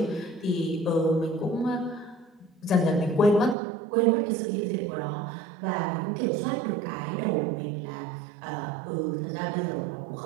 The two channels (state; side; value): drops out; left; at 3.6 s